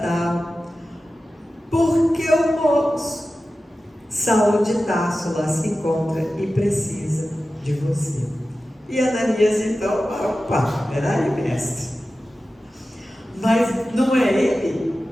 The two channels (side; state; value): both; normal; correlation 0.94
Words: tal, porque o moço Saulo de Tarso lá se encontra e precisa de você. E Ananias então: opa, peraí, mestre, mas não é ele